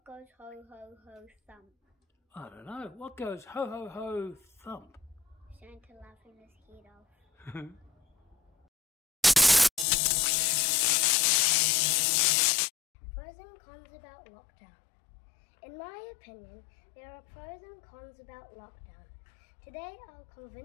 goes ho ho ho thump? I don't know, what goes ho ho ho thump? Santa laughing his head off. Pros and cons about lockdown. In my opinion, there are pros and cons about lockdown. Today I'll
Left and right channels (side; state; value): right; drops out; at 9.9 s